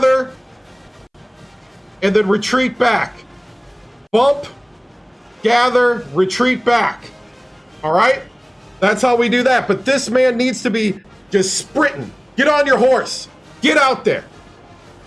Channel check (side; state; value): both; identical; correlation 1.00